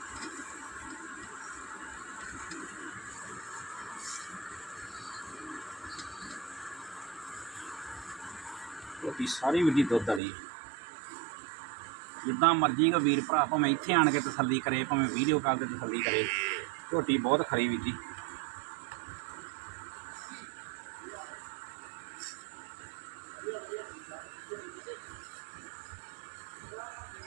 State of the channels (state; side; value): drops out; left; at 10.2 s